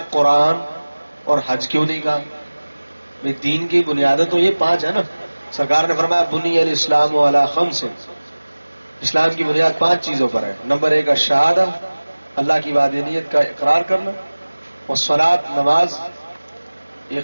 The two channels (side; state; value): both; inverted; correlation -1.00